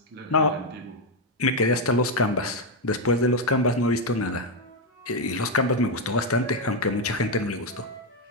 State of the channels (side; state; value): both; normal; correlation 0.03